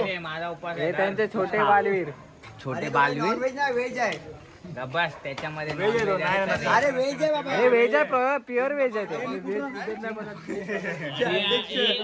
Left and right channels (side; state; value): both; identical; correlation 1.00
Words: माझा उपास हे त्यांचे छोटे बालवीर छोटे बालवीर व्हेज आहे बस त्याच्यामध्ये अरे व्हेज आहे बाबा हे व्हेज आहे प्युअर व्हेज आहे ते